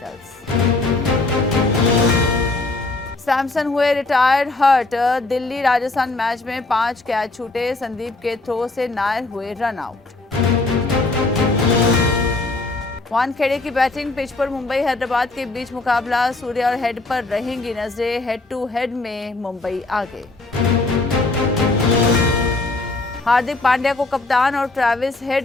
सैमसन हुए retired hurt, Delhi Rajasthan match में 5 कैच छूटे, संदीप के थ्रो से नायर हुए रन आउट। वानखेड़े की बैटिंग पिच पर मुंबई हैदराबाद के बीच मुकाबला, सूर्य और हेड पर रहेंगी नजरें, हेड टू हेड में मुंबई आगे। हार्दिक पांड्या को कप्तान और ट्रेविस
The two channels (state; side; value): quieter; right; 3.2 dB